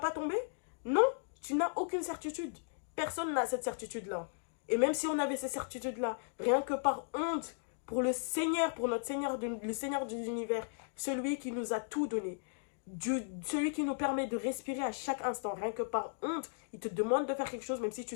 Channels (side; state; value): right; silent; digital silence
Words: tomber? Non, tu n'as aucune certitude. Personne n'a cette certitude-là. Et même si on avait ces certitudes-là, rien que par honte pour le Seigneur, pour notre Seigneur, le Seigneur des univers, celui qui nous a tout donné, celui qui nous permet de respirer à chaque instant, rien que par honte, il te demande de faire quelque chose, même si tu